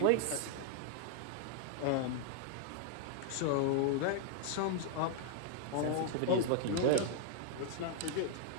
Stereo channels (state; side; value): different; both; correlation -0.01